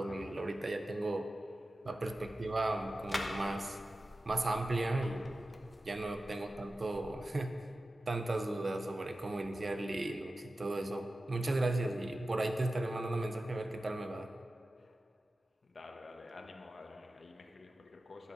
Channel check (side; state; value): both; normal; correlation 0.94